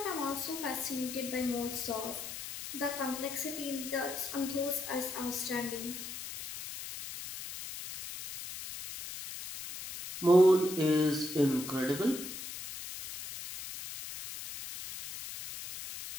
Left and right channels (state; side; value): noise; left; hiss, 9 dB below the sound